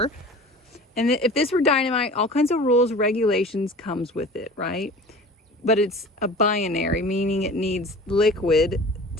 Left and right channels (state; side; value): normal; both; correlation 0.40